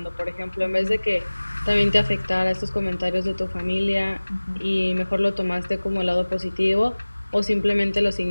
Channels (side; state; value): both; inverted; correlation -1.00